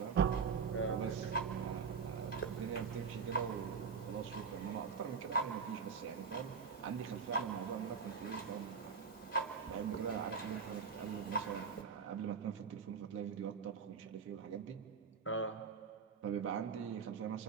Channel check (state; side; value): quieter; left; 5.8 dB